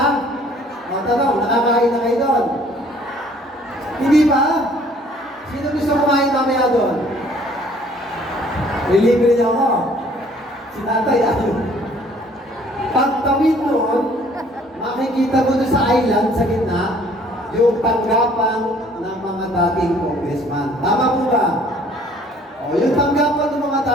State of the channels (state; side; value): normal; both; correlation 0.57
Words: Tanong, nakakain na kayo doon? Hindi ba? Sino gusto kumain mamaya doon? Relibre niyo ako. Si tatay, ayun. Pagtawid noon, makikita mo doon sa island, sa gitna, yung tanggapan ng mga dating congressman. Tama po ba? O, yung tanggapan ng mga